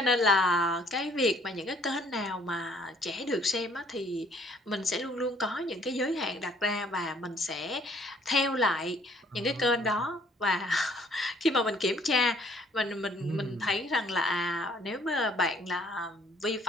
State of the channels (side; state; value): both; normal; correlation 0.61